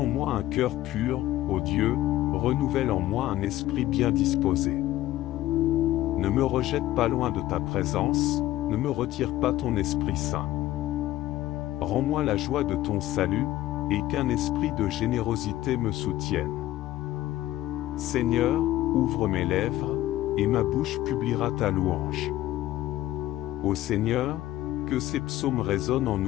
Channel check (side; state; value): right; quieter; 14.8 dB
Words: moi un cœur pur, ô Dieu, renouvelle en moi un esprit bien disposé. Ne me rejette pas loin de ta présence, ne me retire pas ton Esprit Saint. Rends-moi la joie de ton salut, et qu'un esprit de générosité me soutienne. Seigneur, ouvre mes lèvres, et ma bouche publiera ta louange. Ô Seigneur, que ces psaumes résonnent en